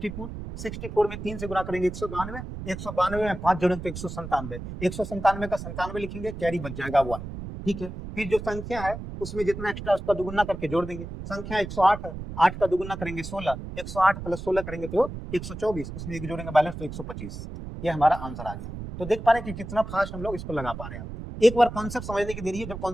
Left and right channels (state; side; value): noise; right; rumble, 9 dB below the sound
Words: 64 में 3 से गुना करेंगे 192, 192 में 5 जोड़ेंगे तो 197, 197 का 97 लिखेंगे, कैरी बच जाएगा 1, ठीक है। फिर जो संख्या है उसमें जितना एक्स्ट्रा उसका दुगुना करके जोड़ देंगे, संख्या 108 है, 8 का दुगुना करेंगे 16, 108 प्लस 16 करेंगे तो 124, उसमें एक जोड़ेंगे बैलेंस तो 125, ये हमारा आंसर आ गया। तो देख पा रहे हैं कि कितना फास्ट हम लोग इसको लगा पा रहे हैं। एक बार कॉन्सेप्ट समझने की देरी है, जब